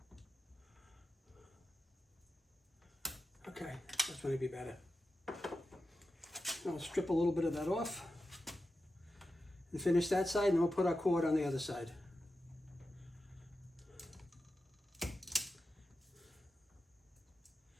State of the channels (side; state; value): both; normal; correlation 0.90